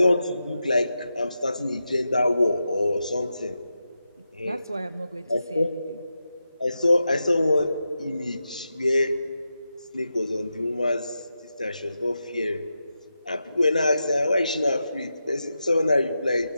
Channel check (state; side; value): inverted; both; correlation -0.89